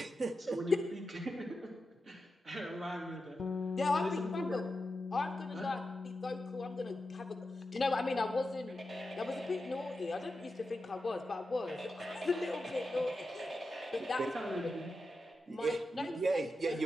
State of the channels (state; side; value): normal; both; correlation 0.90